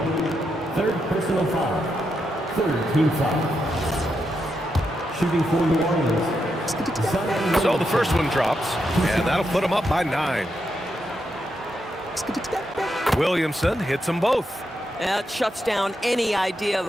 Third personal foul. Third team foul. Shooting for New Orleans. So the first one drops, and that'll put them up by 9. Williamson hits them both. That shuts down any idea of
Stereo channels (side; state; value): both; normal; correlation 0.83